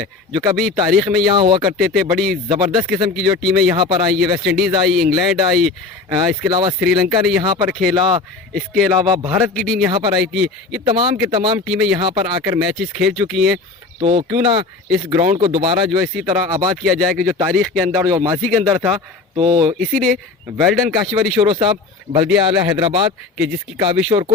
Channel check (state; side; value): quieter; right; 3.9 dB